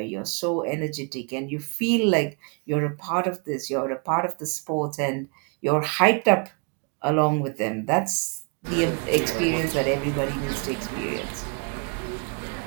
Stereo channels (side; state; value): left; quieter; 36.4 dB